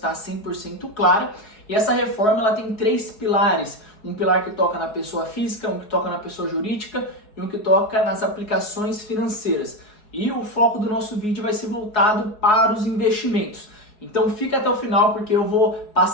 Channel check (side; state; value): right; late; 4.7 ms